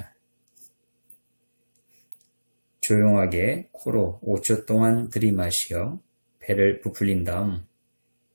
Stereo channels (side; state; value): both; inverted; correlation -1.00